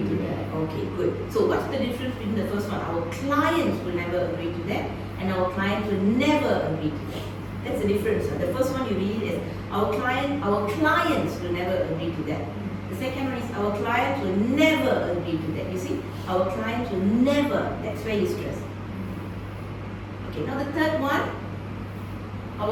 to that. Okay, good. So what's the difference between the first one? Our clients will never agree to that, and our clients will never agree to that. That's the difference. The first one you read is our clients will never agree to that. The second one is our clients will never agree to that. You see, our clients will never. That's where you stress. Okay, now the third one,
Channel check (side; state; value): both; identical; correlation 1.00